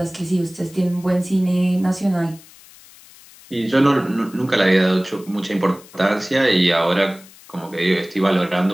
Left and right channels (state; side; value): noise; left; hiss, 23 dB below the sound